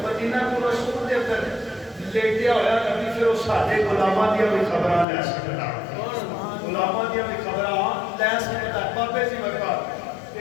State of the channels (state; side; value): drops out; right; at 5.1 s